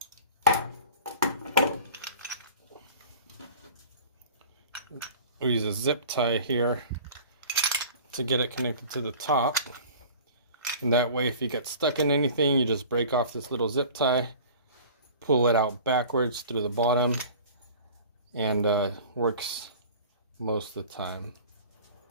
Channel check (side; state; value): both; inverted; correlation -0.43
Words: zip tie here to get it connected to the top. And that way if you get stuck in anything, you just break off this little zip tie pull it out backwards through the bottom, and works most of the time.